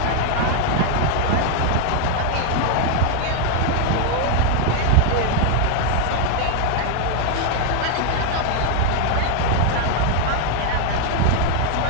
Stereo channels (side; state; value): both; different; correlation 0.01